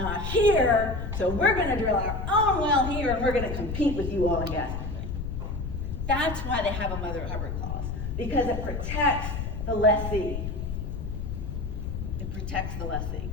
here, so we're going to drill our own well here and we're going to compete with you oil and gas company. That's why they have a Mother Hubbard clause, because it protects the lessee. It protects the lessee.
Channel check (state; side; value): noise; left; rumble, 4 dB below the sound